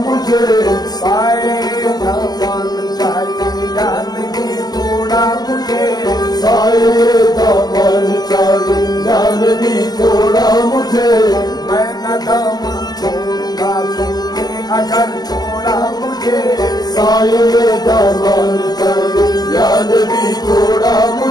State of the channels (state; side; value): late; right; 0.19 ms